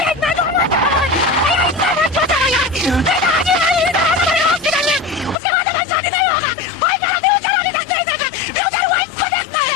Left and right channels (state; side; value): drops out; right; at 5.4 s